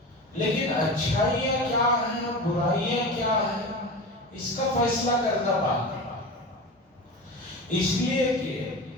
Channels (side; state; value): both; normal; correlation 0.29